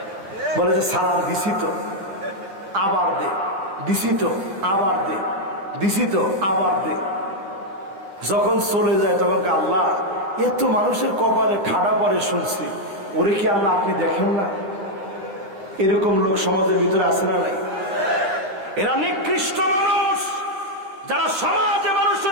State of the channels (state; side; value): late; left; 10 ms